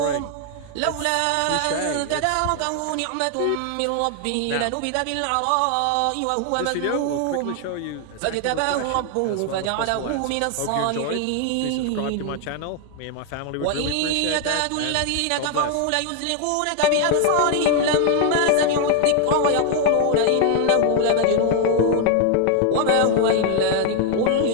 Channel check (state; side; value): different; both; correlation 0.00